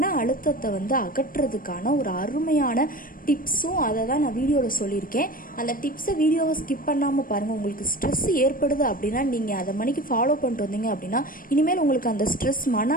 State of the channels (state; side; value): late; right; 0.41 ms